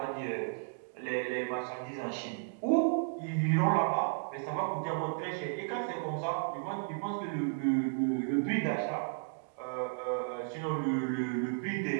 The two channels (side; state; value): left; silent; digital silence